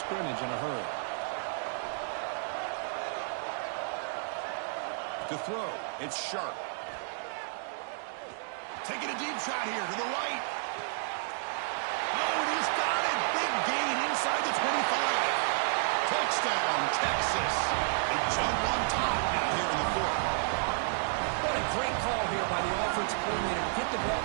in a hurry. To throw, it's Sharp. Taking a deep shot here to the right. Oh, and he's got it. Big gain inside the 25. Touchdown, Texas. They jump on top now here in the 4th. What a great call here by the offensive coordinator to get the ball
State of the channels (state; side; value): silent; left; digital silence